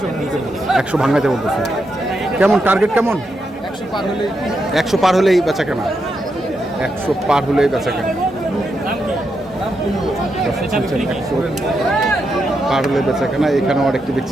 100 ভাঙাইতে বলতেছে। কেমন টার্গেট কেমন? 100 পার হলেই বেচা কেনা। 100 পার হলেই বেচা কেনা। 100 পার হলে বেচা কেনা। এখানেও আরেকটি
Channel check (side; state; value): both; normal; correlation 0.84